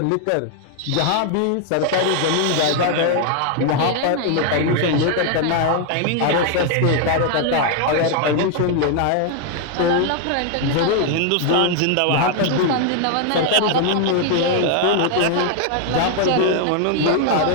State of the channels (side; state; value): both; different; correlation 0.00